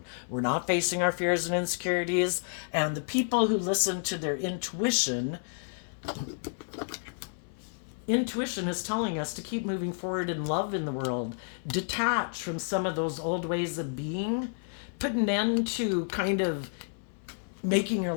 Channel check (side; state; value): right; silent; 58 dB below the other